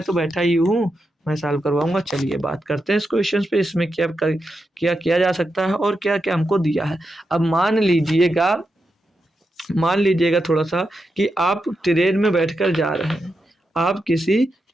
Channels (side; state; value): both; normal; correlation 0.87